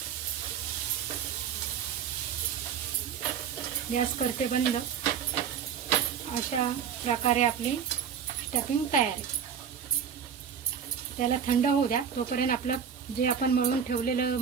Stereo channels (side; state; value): left; quieter; 7.6 dB